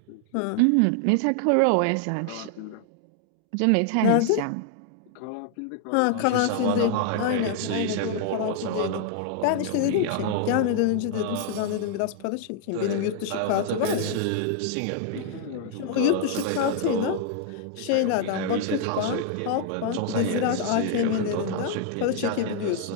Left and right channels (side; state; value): both; different; correlation 0.00